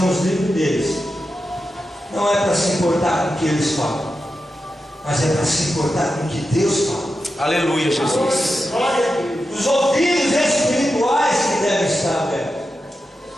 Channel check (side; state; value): both; normal; correlation 0.90